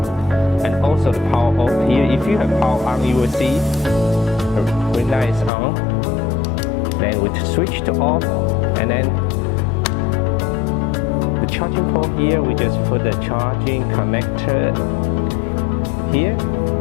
and also the power off here. If you have power on, you will see when that is on. Then we switch to off, and then the charging port here, we just put the charging connector here.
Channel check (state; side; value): drops out; right; at 5.5 s